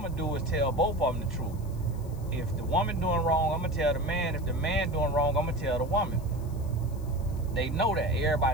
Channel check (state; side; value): noise; left; hiss, 24 dB below the sound